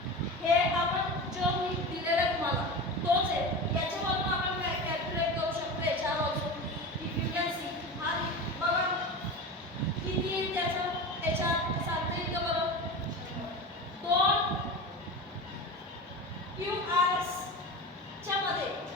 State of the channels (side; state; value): both; normal; correlation 0.28